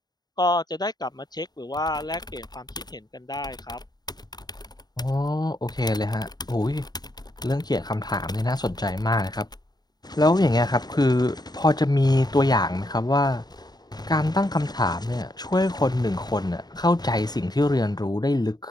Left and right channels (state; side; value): late; right; 0.20 ms